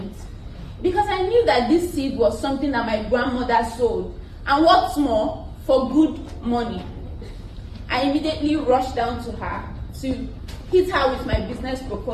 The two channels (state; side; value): identical; both; correlation 1.00